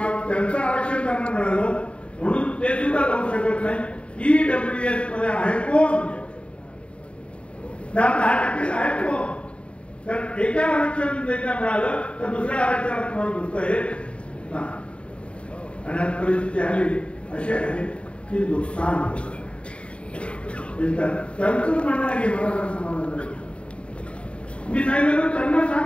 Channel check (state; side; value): late; right; 0.059 ms